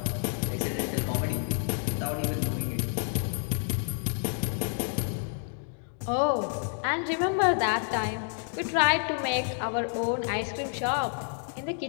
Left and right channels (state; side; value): silent; right; 58 dB below the other